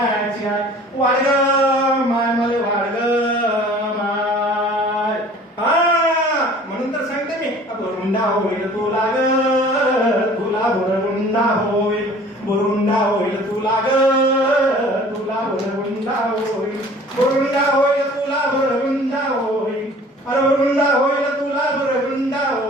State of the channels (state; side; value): normal; both; correlation 0.48